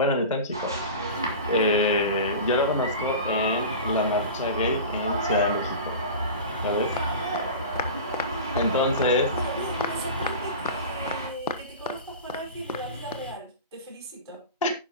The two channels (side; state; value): both; inverted; correlation -0.32